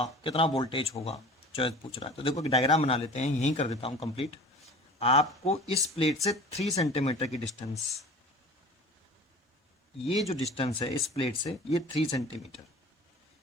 कितना वोल्टेज होगा, चॉइस पूछ रहा है। तो देखो डायग्राम बना लेते हैं, यहीं कर देता हूं कंप्लीट। आपको इस प्लेट से 3 सेंटीमीटर की डिस्टेंस, ये जो डिस्टेंस है इस प्लेट से ये 3 सेंटीमीटर,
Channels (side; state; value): both; normal; correlation 0.41